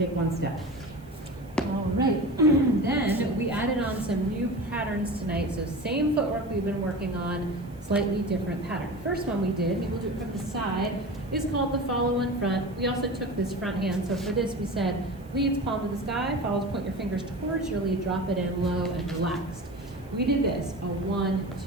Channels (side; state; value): right; noise; hiss, 29 dB below the sound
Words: 1 step. All right, then we added on some new patterns tonight. So same footwork we've been working on, slightly different pattern. First one we did, maybe we'll do it from the side, is called the follow in front. We also took this front hand. So for this we said, leads palm to the sky, follows, point your fingers towards your lead, drop it in low and relaxed. We did this, a 1,